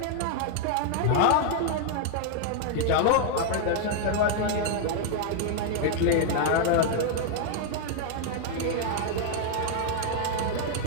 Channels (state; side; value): different; both; correlation 0.00